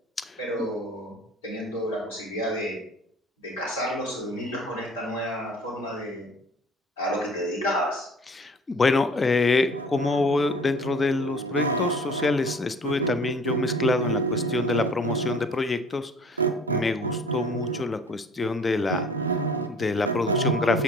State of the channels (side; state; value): both; normal; correlation 0.48